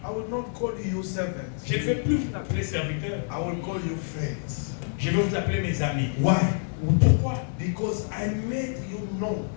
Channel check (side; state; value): right; silent; digital silence